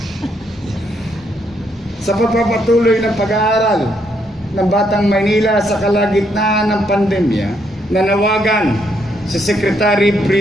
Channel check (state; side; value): normal; both; correlation 0.74